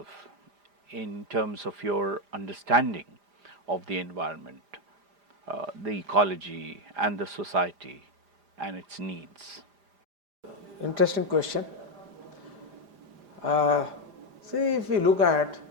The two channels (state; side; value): late; left; 5.0 ms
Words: in terms of your understanding of the environment, the ecology and the society and its needs? Interesting question. See, if we look at